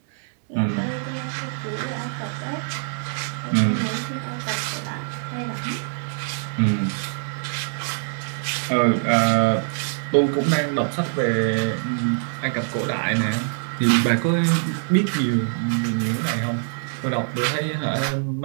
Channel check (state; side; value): silent; left; digital silence